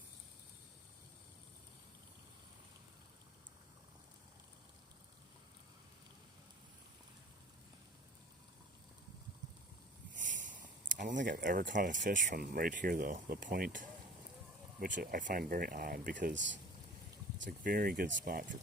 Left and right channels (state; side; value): normal; both; correlation 0.42